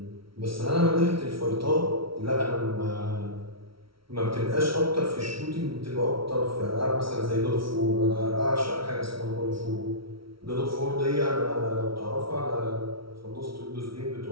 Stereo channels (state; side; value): late; left; 0.75 ms